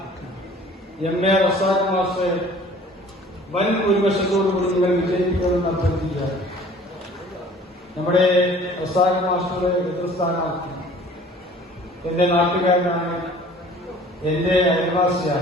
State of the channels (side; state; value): both; normal; correlation 0.50